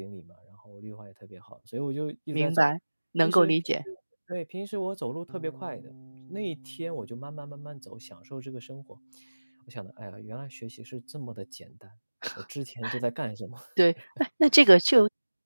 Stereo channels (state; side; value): inverted; both; correlation -1.00